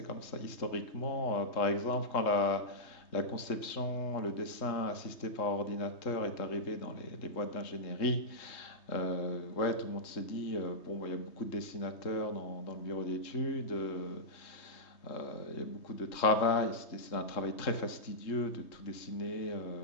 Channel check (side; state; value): right; late; 3.7 ms